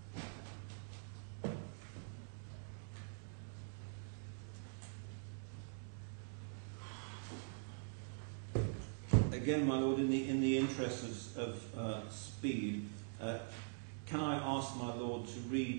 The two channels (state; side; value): silent; left; digital silence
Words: Lord. Again, my Lord, in the interest of speed, can I ask my Lord to